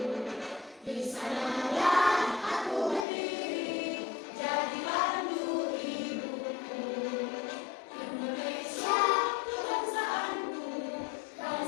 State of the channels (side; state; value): right; drops out; at 3.1 s